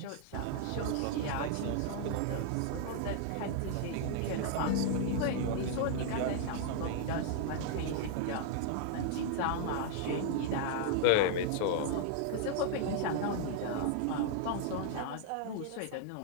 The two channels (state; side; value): different; both; correlation -0.01